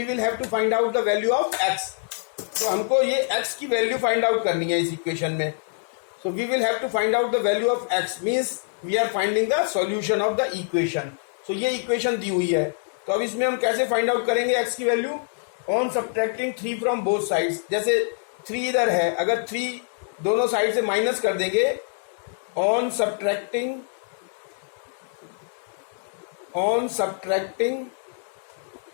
will have to find out the value of x. तो हमको ये x की वैल्यू फाइंड आउट करनी है इस इक्वेशन में. So we will have to find out the value of x, means we are finding the solution of the equation. So ये इक्वेशन दी हुई है, तो अब इसमें हम कैसे फाइंड आउट करेंगे एक्स की value? On subtracting 3 from both sides. जैसे 3 इधर है, अगर 3 दोनों साइड से माइनस कर देंगे, on subtracting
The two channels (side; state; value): right; silent; digital silence